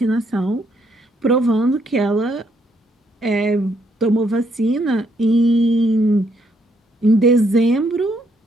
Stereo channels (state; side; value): normal; both; correlation 0.72